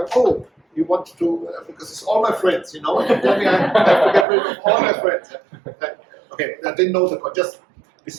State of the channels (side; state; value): left; drops out; at 4.2 s